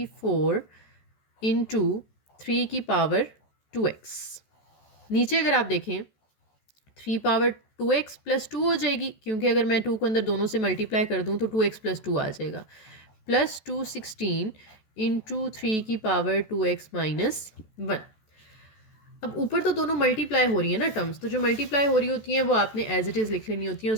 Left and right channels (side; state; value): right; late; 14 ms